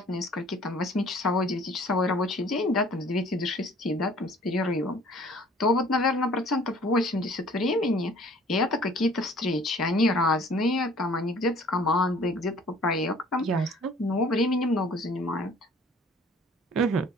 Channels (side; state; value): both; normal; correlation 0.53